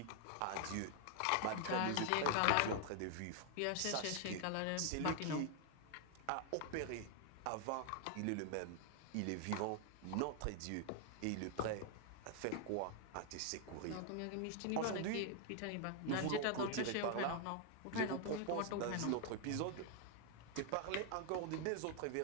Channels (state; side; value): different; both; correlation 0.00